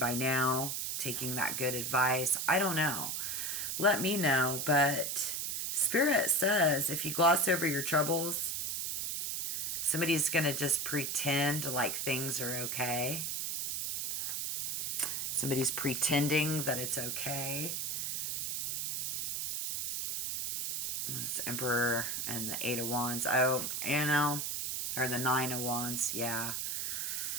now, taking that good advice. I don't know. Let me know. But Spirit says if you gloss over your troubles, somebody's going to just pretend like things are okay. Somebody's pretending that it's okay. This Emperor and the Eight of Wands. Oh, you know, or the Nine of Wands. Yeah.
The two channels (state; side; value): noise; right; hiss, 1 dB below the sound